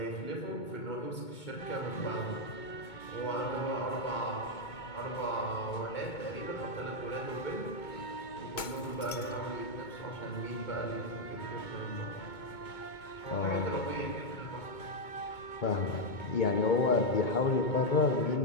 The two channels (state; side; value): late; right; 2.2 ms